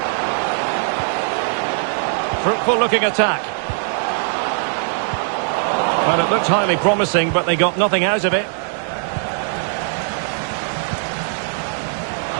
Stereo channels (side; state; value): left; silent; 66 dB below the other